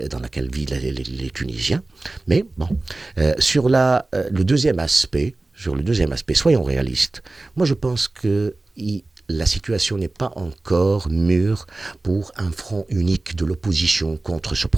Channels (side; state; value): left; quieter; 3.1 dB